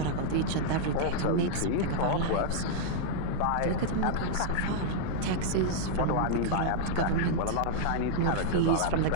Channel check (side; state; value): both; different; correlation -0.01